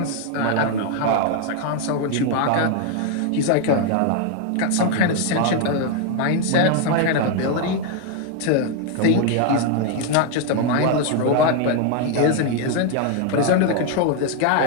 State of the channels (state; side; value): different; both; correlation 0.01